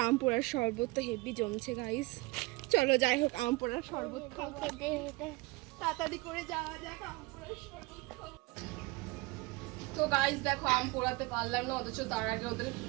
আম পোড়ার শরবত তো হেভি জমছে গাইস। চলো যাই হোক আম পোড়ার শরবত খাবো, তাড়াতাড়ি করে যাওয়া যাক আম পোড়ার শরবত খাবো। তো গাইস দেখো আম পোড়াতে পারলাম না, অথচ তার আগে ওদের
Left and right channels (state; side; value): quieter; left; 23.8 dB